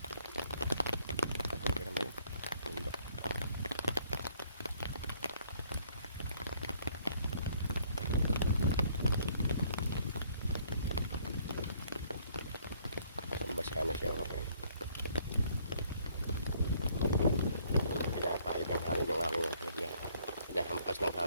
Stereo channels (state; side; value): inverted; both; correlation -0.63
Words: Bundok. Basa na siya. Okay. Pinapahit ang hangin yung aking hinahampas ng